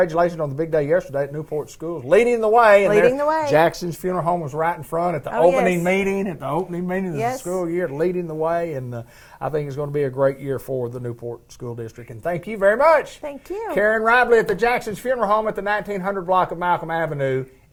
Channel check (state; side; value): identical; both; correlation 1.00